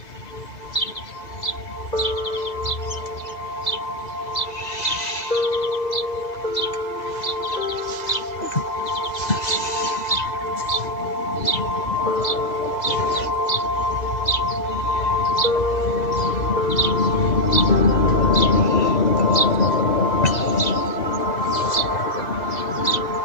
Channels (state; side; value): late; right; 2.0 ms